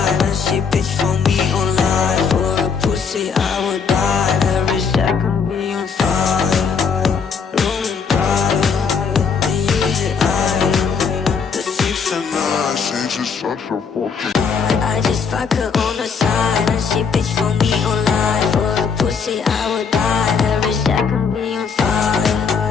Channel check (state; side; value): quieter; right; 5.9 dB